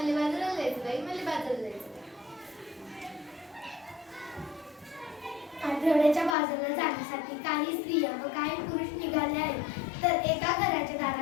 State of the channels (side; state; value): right; drops out; at 6.4 s